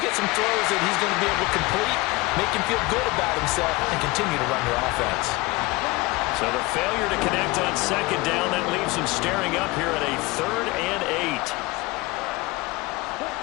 get some throws that he's going to be able to complete, make him feel good about himself, and continue to run your offense. So the failure to connect on 2nd down, that leaves him staring up here at a 3rd and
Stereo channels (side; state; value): right; quieter; 22.6 dB